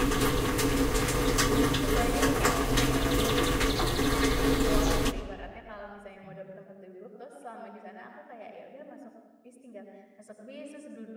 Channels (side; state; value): both; identical; correlation 1.00